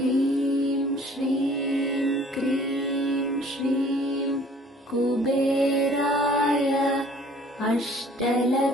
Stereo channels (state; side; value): normal; both; correlation 0.54